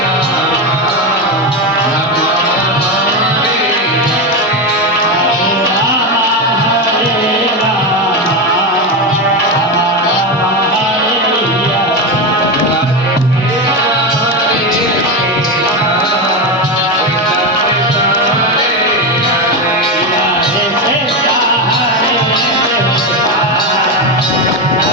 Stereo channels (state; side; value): normal; both; correlation 0.14